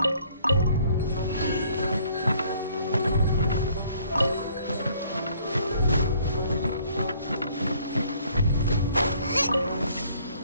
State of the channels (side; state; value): both; inverted; correlation -0.61